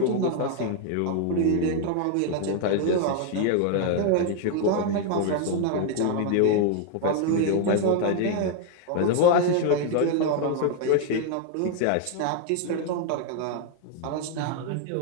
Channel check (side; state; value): both; different; correlation 0.00